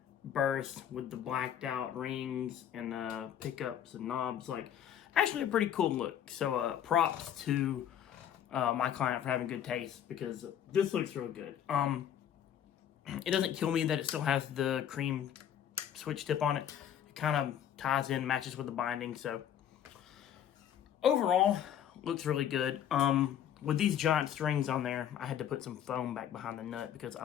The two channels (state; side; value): quieter; right; 9.9 dB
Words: burst with the blacked out rings and pickups and knobs. Like, actually a pretty cool look. So props to my client for having good taste, because this looks real good. It doesn't kill me that it still has the cream switch tip on it. It kind of ties in, matches with the binding. So overall, looks really good. With these giant strings on there, I had to put some foam back behind the nut because